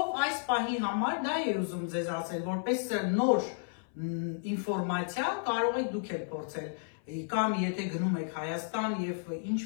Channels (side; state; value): right; silent; 56 dB below the other